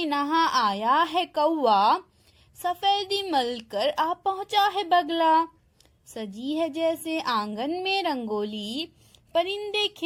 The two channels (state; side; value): identical; both; correlation 1.00